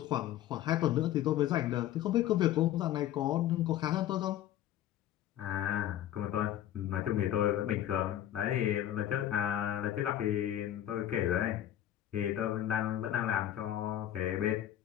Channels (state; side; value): quieter; right; 12.1 dB